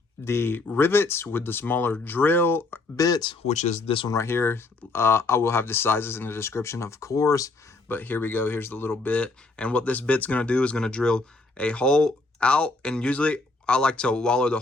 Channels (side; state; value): right; quieter; 3.4 dB